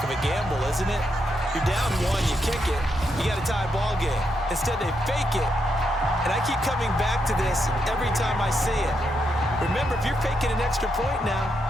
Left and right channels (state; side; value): normal; both; correlation 0.81